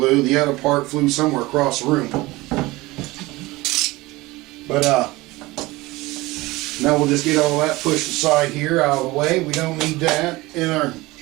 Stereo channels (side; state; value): left; quieter; 20.6 dB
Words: The other part flew somewhere across the room. But now we'll just get all that pushed aside here, out of the way. We don't need that in our...